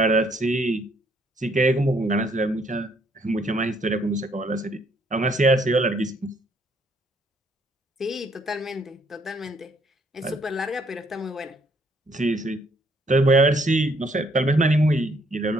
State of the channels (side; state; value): both; normal; correlation 0.68